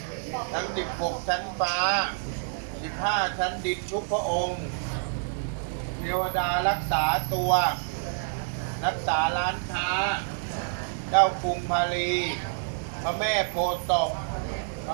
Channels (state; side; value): silent; left; digital silence